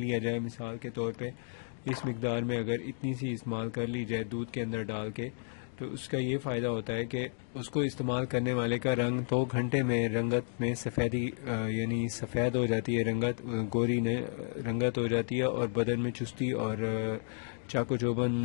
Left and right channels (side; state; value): right; silent; digital silence